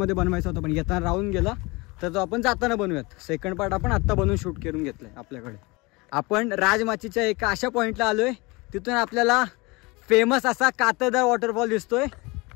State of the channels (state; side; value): quieter; right; 25.0 dB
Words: बनवायचा होता, पण येताना राहून गेला. तर तो आपण जाताना बनवूयात. सेकंड पार्ट आपण आत्ता बनवून शूट करून घेतलाय आपल्याकडे. आपण राजमाचीच्या एका अशा पॉईंटला आलोय तिथून आपल्याला फेमस असा कातळदार वॉटरफॉल दिसतोय.